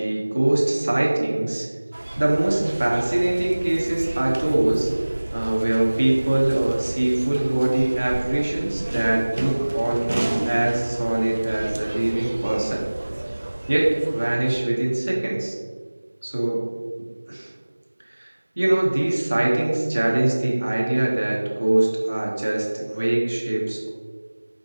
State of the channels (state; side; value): inverted; both; correlation -1.00